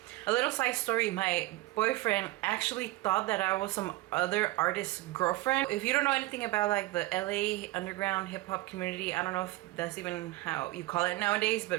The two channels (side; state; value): left; quieter; 18.8 dB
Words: A little side story, my boyfriend actually thought that I was some other artist's girlfriend. If you don't know anything about like the LA underground hip-hop community, I don't know if that's even how you call it nowadays,